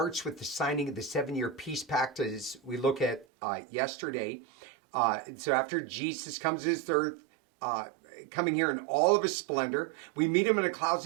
with the signing of the 7-year peace pact, as we look at yesterday. So after Jesus comes to this earth, coming here in all of his splendor, we meet him in the clouds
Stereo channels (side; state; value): left; drops out; at 3.2 s